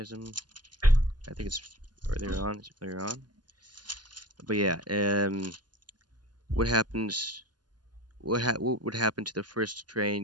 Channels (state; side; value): late; left; 0.70 ms